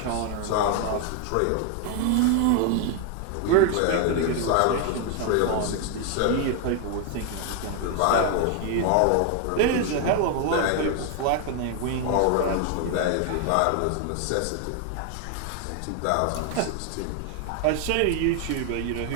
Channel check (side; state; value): both; different; correlation 0.01